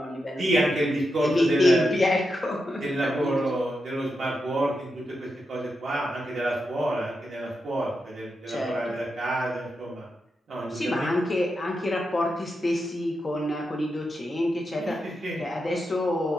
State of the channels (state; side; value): normal; both; correlation 0.87